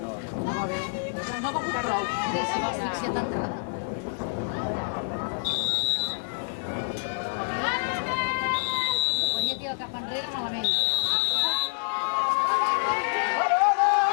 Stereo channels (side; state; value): right; silent; 58 dB below the other